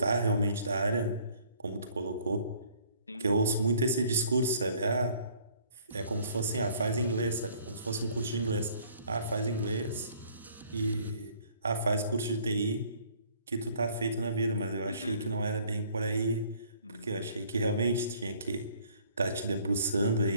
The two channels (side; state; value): both; inverted; correlation -0.58